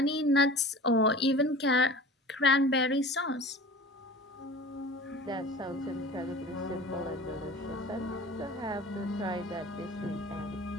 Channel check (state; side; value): normal; both; correlation 0.39